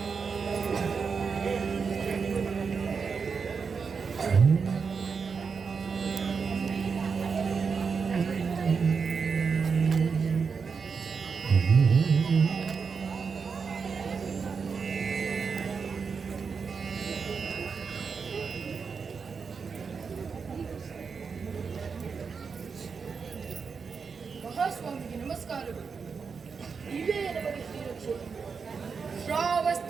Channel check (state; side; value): quieter; left; 5.5 dB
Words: ಮಹಾಸ್ವಾಮಿಗೆ ನಮಸ್ಕಾರಗಳು. ಇವೇ ನಮಗೆ ಶ್ರೀರಕ್ಷೆ.